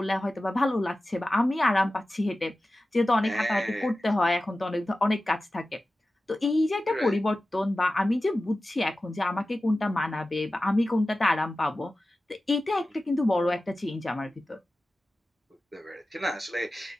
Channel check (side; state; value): both; normal; correlation 0.95